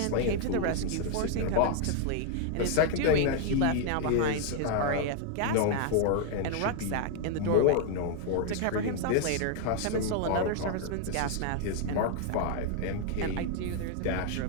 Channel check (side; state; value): both; different; correlation 0.00